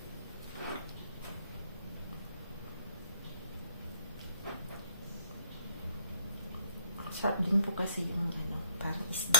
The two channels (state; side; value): inverted; both; correlation -0.61